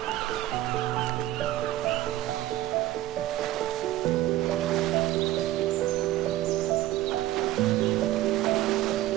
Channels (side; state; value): left; quieter; 15.0 dB